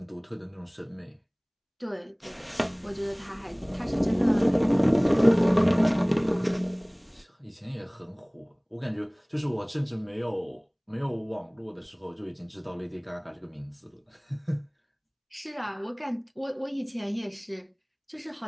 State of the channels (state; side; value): identical; both; correlation 1.00